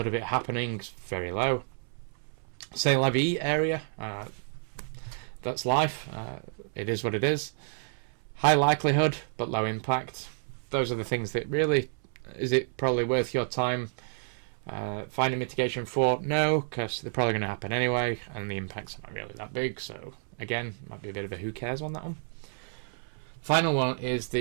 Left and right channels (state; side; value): silent; left; 58 dB below the other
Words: of it happening is very low. C'est la vie area, that's life, it is what it is. High likelihood but low impact. Those are the things that really, is it probably worth your time finding mitigation for? No, because they're probably going to happen anyway, and the impacts are not really that big, so again, might be a bit of a who cares on that one. Final one is